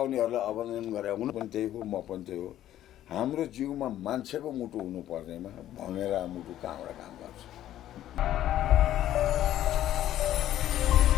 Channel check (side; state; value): right; quieter; 12.6 dB